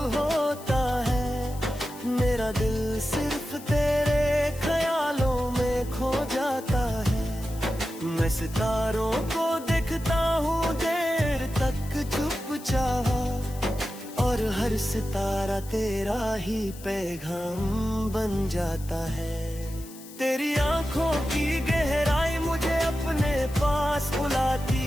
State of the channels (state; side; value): noise; left; hiss, 18 dB below the sound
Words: होता है, मेरा दिल सिर्फ तेरे ख्यालों में खो जाता है। मैं सितारों को देखता हूँ देर तक चुपचाप, और हर सितारा तेरा ही पैगाम बन जाता है। तेरी आंखों की गहराई मुझे अपने पास बुलाती